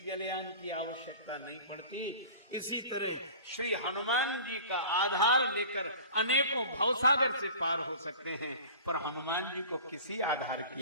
जलयान की आवश्यकता नहीं पड़ती। इसी तरह श्री हनुमान जी का आधार लेकर अनेकों भवसागर से पार हो सकते हैं, पर हनुमान जी को किसी आधार की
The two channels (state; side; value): inverted; both; correlation -0.41